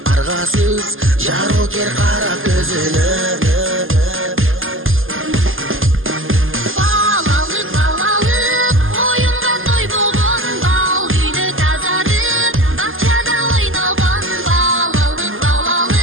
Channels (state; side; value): late; left; 0.59 ms